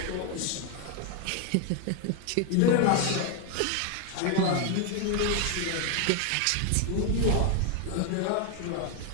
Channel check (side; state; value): both; different; correlation 0.01